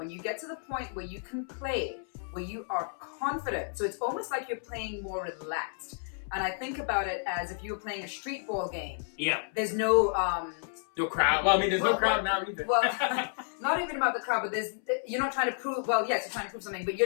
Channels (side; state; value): right; silent; 57 dB below the other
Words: you get to the point where you can play, where you are confident, so it's almost like you're playing more relaxed. And I think about it as if you were playing a street ball game. Yeah. There's no no crowd. Well, I mean, there's no crowd now either. Well, not even about the crowd, but you're not trying to prove. Well, yes, you're trying to prove something, but